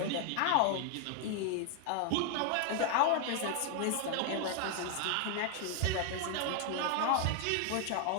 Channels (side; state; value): both; different; correlation 0.00